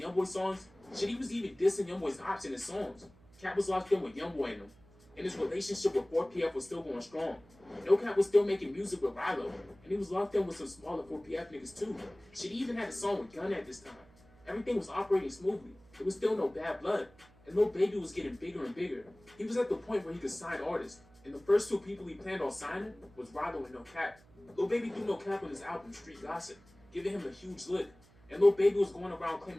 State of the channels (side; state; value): right; noise; hum, 27 dB below the sound